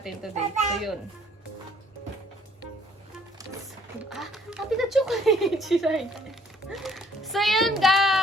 today. So, yun. Happy na chocolate! Chiray. So, yun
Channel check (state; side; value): normal; both; correlation 0.62